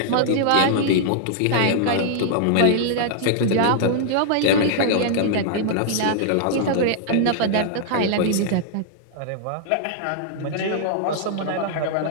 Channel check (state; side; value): different; both; correlation -0.01